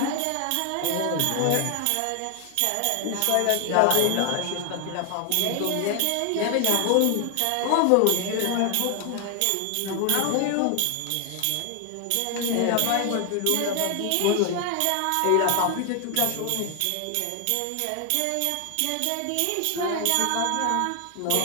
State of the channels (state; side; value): different; both; correlation 0.00